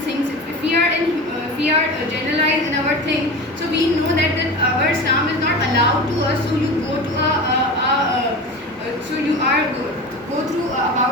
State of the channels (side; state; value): both; normal; correlation 0.30